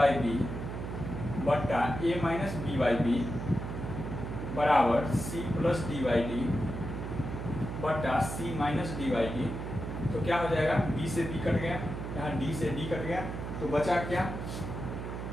B बट्टा A minus B by B बराबर C plus D by D बट्टा C minus D by D. तो क्या हो जाएगा? बी से बी कट गया, यहाँ डी से डी कट गया, तो बचा क्या?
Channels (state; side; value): noise; right; hum, 6 dB below the sound